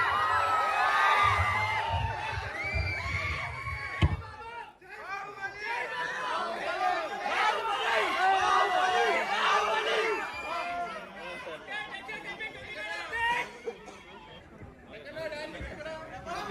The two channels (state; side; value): identical; both; correlation 1.00